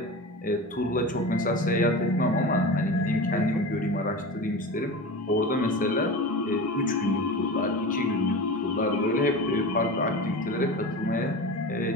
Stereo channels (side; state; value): both; normal; correlation 0.29